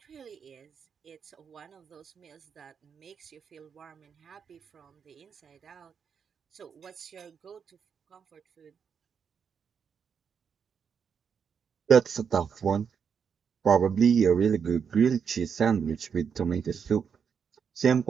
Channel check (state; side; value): quieter; left; 6.8 dB